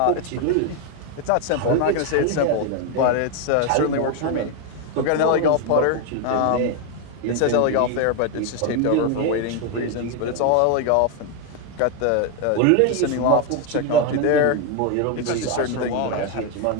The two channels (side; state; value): both; different; correlation 0.01